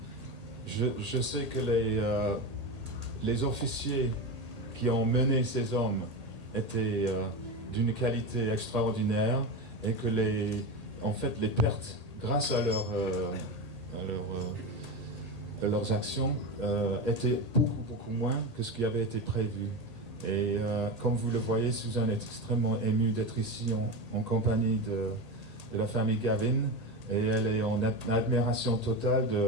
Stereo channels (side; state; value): left; late; 1.8 ms